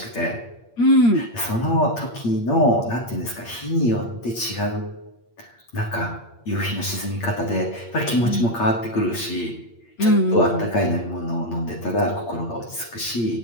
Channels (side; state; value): right; late; 8.6 ms